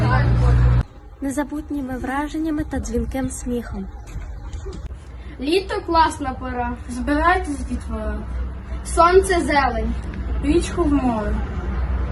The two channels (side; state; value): both; identical; correlation 1.00